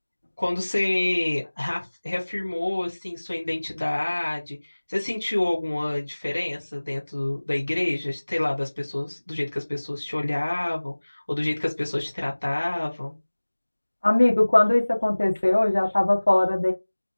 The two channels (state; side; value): inverted; both; correlation -1.00